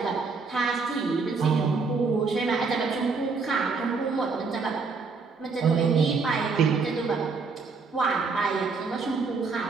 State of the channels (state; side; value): quieter; left; 4.6 dB